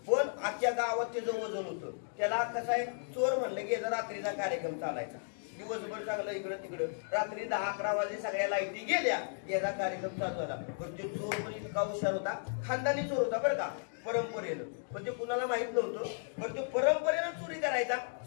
पण आजच्या गावात त्याचं वजन होतं. त्याला कसं आहे, चोर म्हणलं की रात्रीचा कार्यक्रम चालायचा. दिवसभर चांगलं इकडं तिकडं, रात्री 10-11 वाजले सगळ्या लाईटी गेल्या, याचा कार्यक्रम चालू झाला. पण ते चोर पण इतका हुशार होता, खानदानी चोर होता बरं का, परंपरेनं. पण ते कुणाला माहित नव्हतं. पण ते परंपरेनं चोरी करायचा.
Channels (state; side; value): silent; right; digital silence